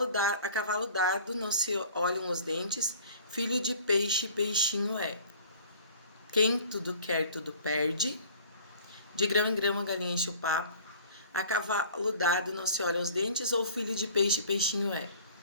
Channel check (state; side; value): inverted; both; correlation -0.48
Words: cavalo dado não se olham os dentes. Filho de peixe, peixinho é. Quem tudo quer, tudo perde. De grão em grão a galinha enche o papo. A cavalo dado não se olham os dentes, ou filho de peixe, peixinho é.